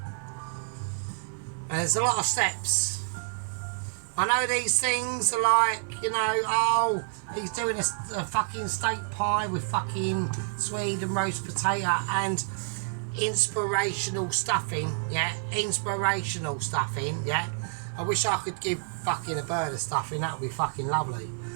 And there's a lot of steps. I know these things are like, you know, oh, he's doing a fucking steak pie with fucking Swede and roast potato, and inspirational stuffing, yeah, inspirational stuffing, yeah. I wish I could give fucking a bird a stuffing, that would be fucking lovely.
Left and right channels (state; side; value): silent; left; 59 dB below the other